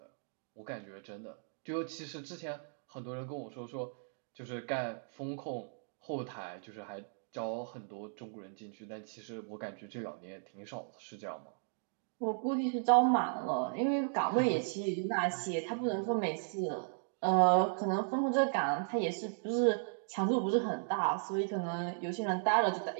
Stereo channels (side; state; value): left; silent; digital silence